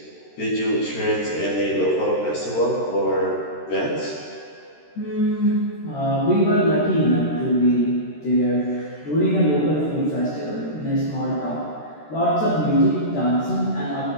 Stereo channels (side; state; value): right; late; 13 ms